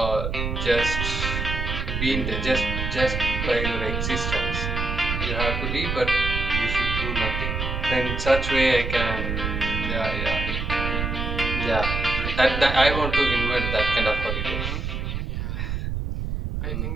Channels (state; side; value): noise; right; rumble, 2 dB below the sound